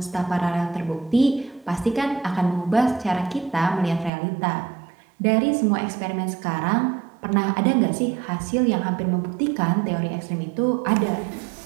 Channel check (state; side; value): drops out; left; at 4.1 s